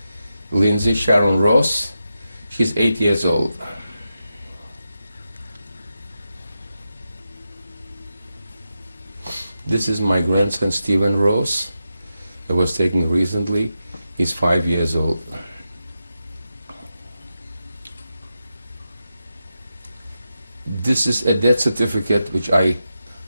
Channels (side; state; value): both; inverted; correlation -0.89